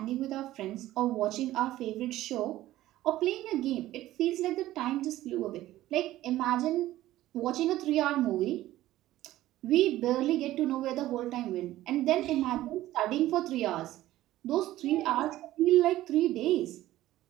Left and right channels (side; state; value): left; quieter; 15.1 dB